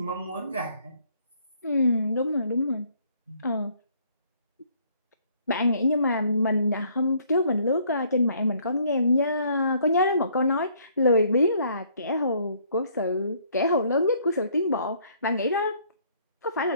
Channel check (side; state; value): both; inverted; correlation -0.64